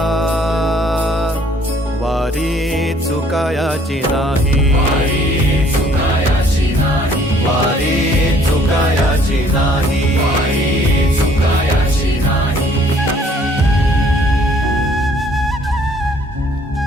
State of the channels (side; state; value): both; normal; correlation 0.60